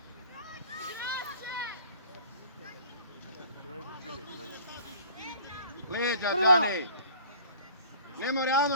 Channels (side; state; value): both; inverted; correlation -0.49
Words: Leđa, Džane! Ne mora